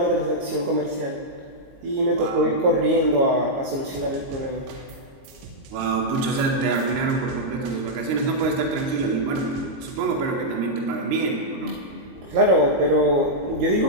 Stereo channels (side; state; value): left; late; 22 ms